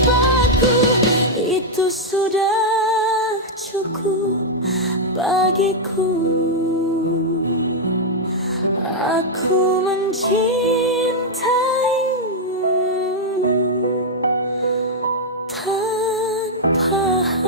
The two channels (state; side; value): normal; both; correlation -0.03